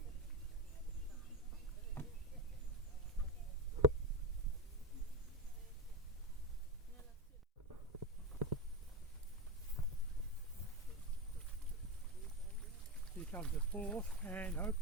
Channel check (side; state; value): both; normal; correlation 0.16